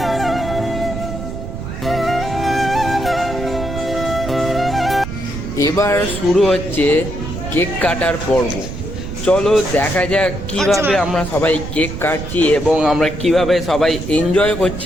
এবার শুরু হচ্ছে কেক কাটার পর্ব। চলো দেখা যাক কিভাবে আমরা সবাই কেক কাটছি এবং আমরা কিভাবে সবাই এনজয়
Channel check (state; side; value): noise; right; rumble, 7 dB below the sound